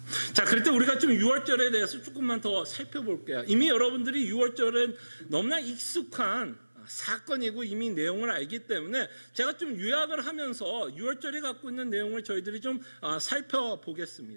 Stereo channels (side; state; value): both; inverted; correlation -1.00